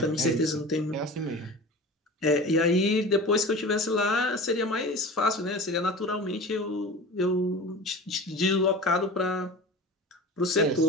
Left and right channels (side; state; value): both; normal; correlation 0.35